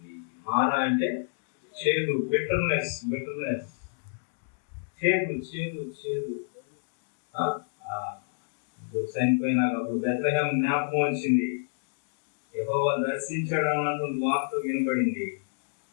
మారా అంటే చేదు, బిటర్నెస్, చేదు. చనిపోయినాక బెత్లెహేము జ్ఞాపకం వచ్చింది, యెహోవా దర్శించాడు అన్నటువంటి వార్త వినబడింది.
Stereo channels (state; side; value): silent; right; digital silence